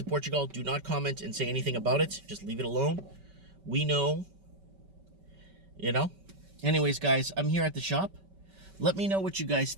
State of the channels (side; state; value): left; late; 5.2 ms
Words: Portugal, do not comment and say anything about it. Just leave it alone. We know. Anyways, guys, I'm here at the shop. Let me know what you guys